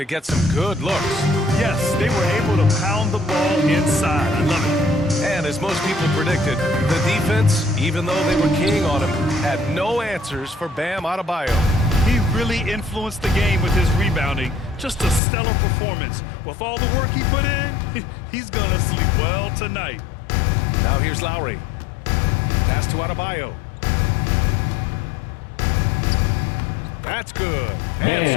get some good looks. Yes, they were able to pound the ball inside. I love it. And as most people predicted, the defense, even though they were keying on him, had no answers for Bam Adebayo. He really influenced the game with his rebounding. Just a stellar performance. With all the work he put in, he's going to sleep well tonight. Now here's Lowry. Pass to Adebayo. That's good. And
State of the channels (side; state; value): right; drops out; at 15.2 s